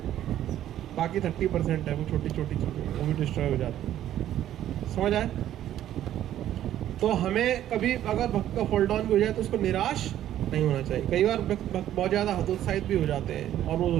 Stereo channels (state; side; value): quieter; left; 12.0 dB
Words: बाकी 30% है वो छोटी छोटी चीजें, वो भी डिस्ट्रॉय हो जाती है। समझ आए? तो हमें कभी अगर भक्त का फॉल डाउन भी हो जाए तो उसको निराश नहीं होना चाहिए। कई बार भक्त बहुत ज़्यादा हतोत्साहित भी हो जाते हैं और वो